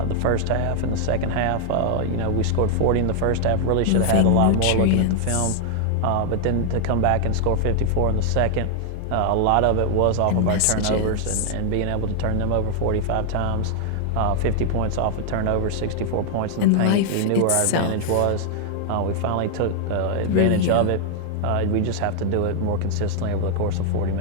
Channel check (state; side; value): different; both; correlation 0.00